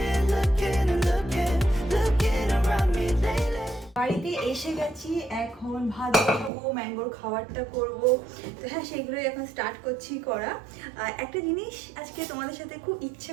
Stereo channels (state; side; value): drops out; left; at 6.5 s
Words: looking and looking, looking around me lately. বাড়িতে এসে গেছি, এখন ভাত বসাবো, ম্যাঙ্গোর খাবারটা করব। তো হ্যাঁ, সেগুলোই এখন স্টার্ট করছি করা। একটা জিনিস আজকে তোমাদের সাথে খুব ইচ্ছে